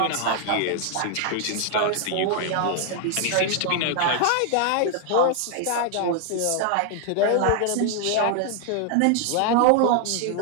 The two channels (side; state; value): both; different; correlation 0.00